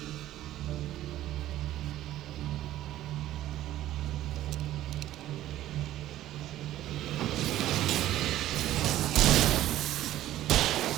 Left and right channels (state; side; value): quieter; left; 13.8 dB